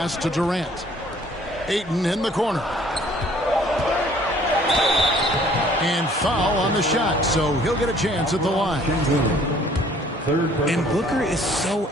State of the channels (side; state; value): both; normal; correlation 0.57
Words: to Durant. Ayton in the corner. And foul on the shot, so he'll get a chance at the line. And Booker is so